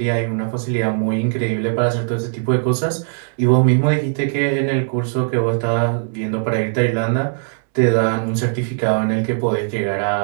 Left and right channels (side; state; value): left; silent; 66 dB below the other